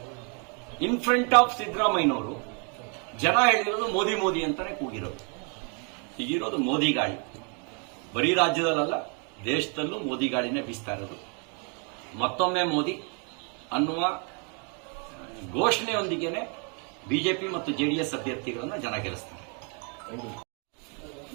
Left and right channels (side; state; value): left; quieter; 37.5 dB